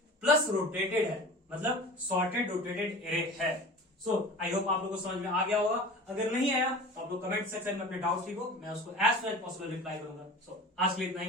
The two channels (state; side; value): normal; both; correlation 0.37